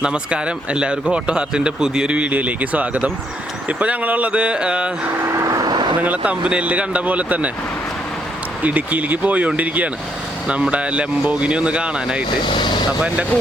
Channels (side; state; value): both; normal; correlation 0.73